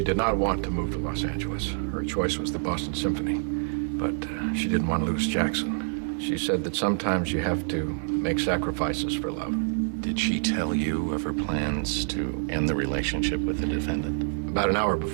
did not want to move to Los Angeles. Her choice was the Boston Symphony, but she didn't want to lose Jackson. She said that sometimes you have to make sacrifices for love. Did she tell you of her plans to end the relationship with the defendant? About an hour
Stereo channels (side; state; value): left; silent; digital silence